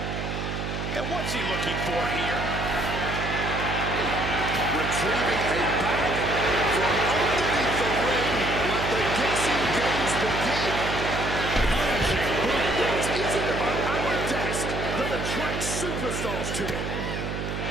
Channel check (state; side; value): noise; right; hum, 4 dB below the sound